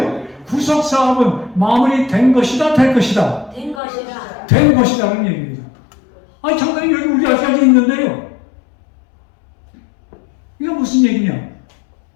구속 사업은 마무리된 것이다, 될 것이다. 된 것이라. 된 것이라는 얘기입니다. 아니, 장관님 여기 우리 아직까지 있는데요. 이거 무슨 얘기냐?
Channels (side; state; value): right; drops out; at 3.8 s